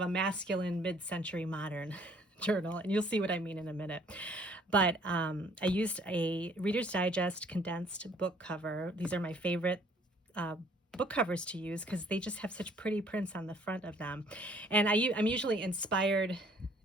a masculine mid-century modern journal, and you'll see what I mean in a minute. But I used a Reader's Digest condensed book cover. These are my favorite book covers to use because they just have such pretty prints on the front of them. And I'm usually inspired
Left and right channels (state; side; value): normal; both; correlation 0.60